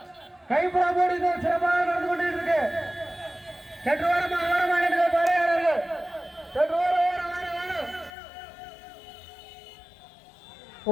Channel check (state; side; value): drops out; right; at 8.1 s